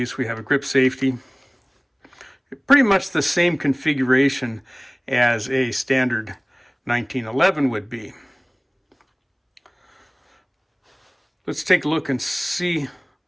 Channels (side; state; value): both; identical; correlation 1.00